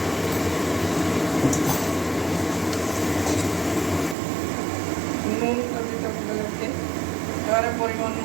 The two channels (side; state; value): left; drops out; at 4.2 s